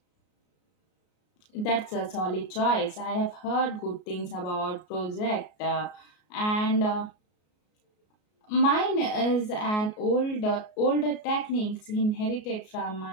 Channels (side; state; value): right; late; 33 ms